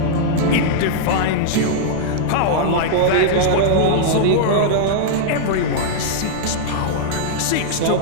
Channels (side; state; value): both; different; correlation -0.02